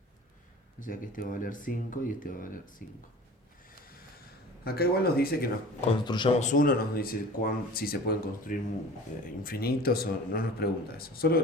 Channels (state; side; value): normal; both; correlation 0.41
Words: O sea que este va a valer 5 y este va a valer 5. Acá igual nos dice que nos construyamos uno, nos dice si se pueden construir infinitos o no nos pregunta eso. Solo